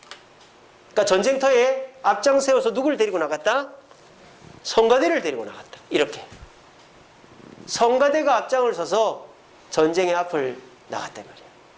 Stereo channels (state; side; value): identical; both; correlation 1.00